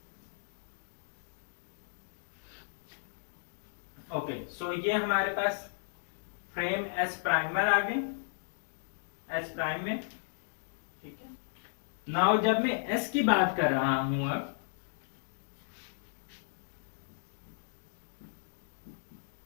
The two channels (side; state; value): right; silent; digital silence